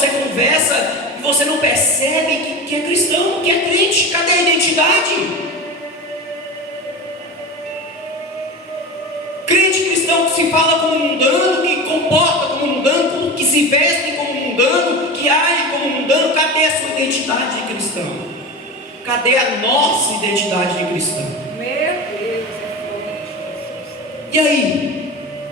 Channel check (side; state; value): both; normal; correlation 0.28